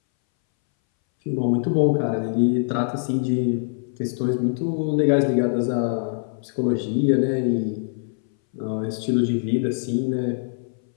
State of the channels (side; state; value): right; silent; 61 dB below the other